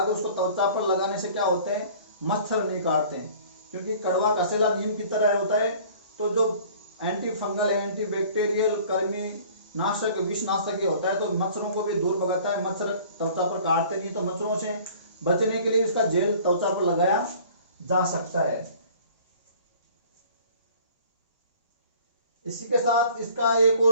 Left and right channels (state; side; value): inverted; both; correlation -0.50